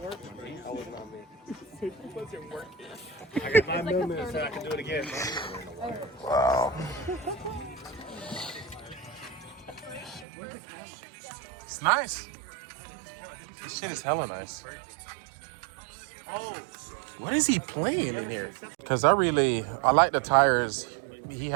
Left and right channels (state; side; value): drops out; left; at 10.2 s